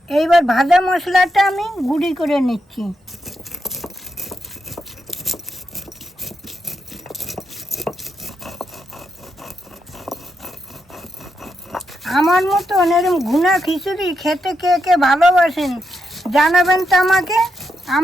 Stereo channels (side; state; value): both; normal; correlation 0.83